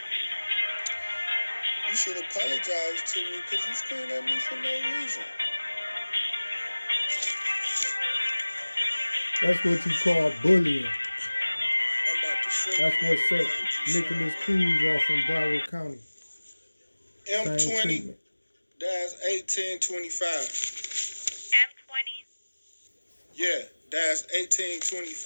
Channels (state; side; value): inverted; both; correlation -1.00